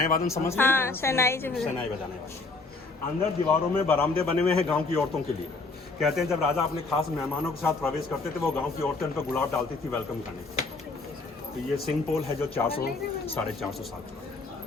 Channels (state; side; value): quieter; right; 3.7 dB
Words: समझ रहे हैं? शहनाई बजाने। अंदर दीवारों में बरामदे बने हुए हैं गाँव की औरतों के लिए। कहते हैं जब राजा अपने खास मेहमानों के साथ प्रवेश करते थे वो गांव की औरतें उन पर गुलाब डालती थी वेलकम करने। तो ये सिंह पोल है जो 400-450 साल का।